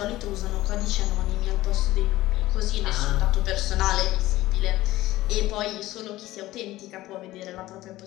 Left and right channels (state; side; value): quieter; right; 16.6 dB